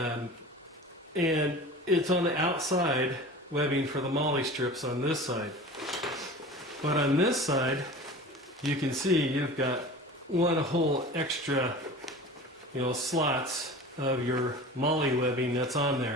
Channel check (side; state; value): both; normal; correlation 0.37